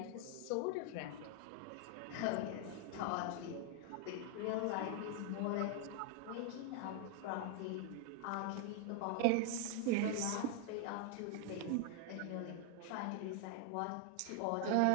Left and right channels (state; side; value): different; both; correlation 0.00